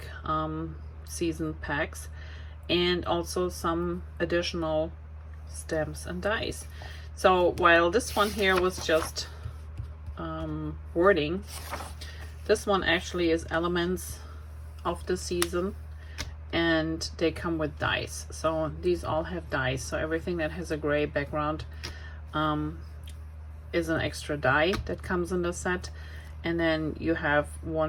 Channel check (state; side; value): identical; both; correlation 1.00